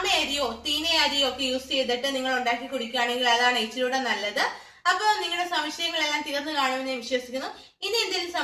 അരിയോ തീന അരിയോ ഒക്കെ യൂസ് ചെയ്തിട്ട് നിങ്ങൾ ഉണ്ടാക്കി കുടിക്കുകയാണെങ്കിൽ അതാണ് ഇച്ചിരൂടെ നല്ലത്. അപ്പൊ നിങ്ങളുടെ സംശയങ്ങളെല്ലാം തീർന്നു കാണുമെന്ന് ഞാൻ വിശ്വസിക്കുന്നു. ഇനി എന്തെങ്കിലും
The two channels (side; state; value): both; identical; correlation 1.00